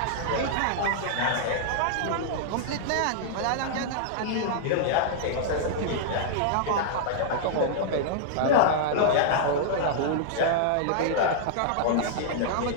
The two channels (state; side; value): different; both; correlation -0.02